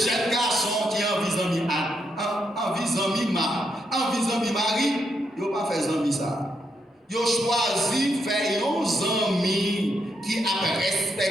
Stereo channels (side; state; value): both; normal; correlation 0.79